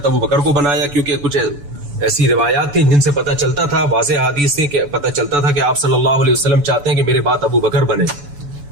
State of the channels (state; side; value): late; left; 7.0 ms